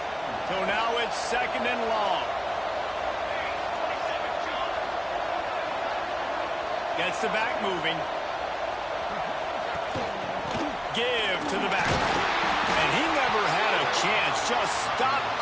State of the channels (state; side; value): identical; both; correlation 1.00